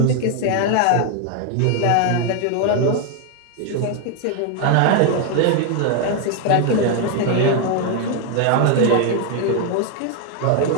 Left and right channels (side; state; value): both; different; correlation 0.01